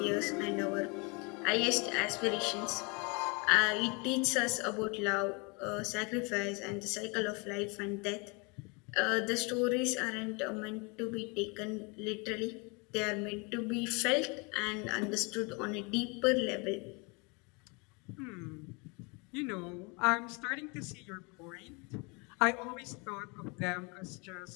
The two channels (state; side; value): quieter; right; 30.5 dB